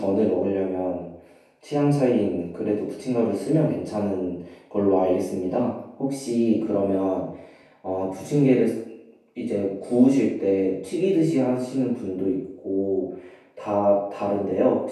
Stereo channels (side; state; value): both; identical; correlation 1.00